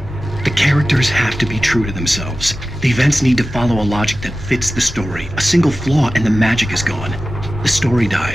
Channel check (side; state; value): both; normal; correlation 0.94